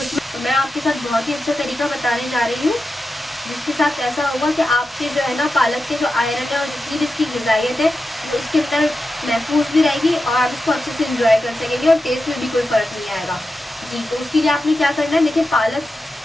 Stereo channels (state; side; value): normal; both; correlation 0.90